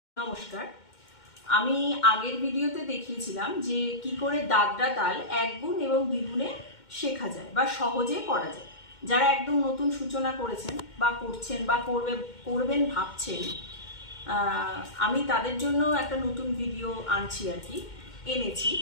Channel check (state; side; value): late; right; 2.1 ms